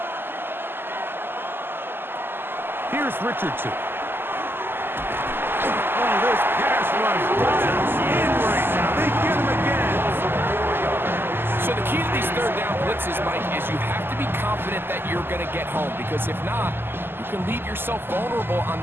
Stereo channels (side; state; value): left; late; 0.10 ms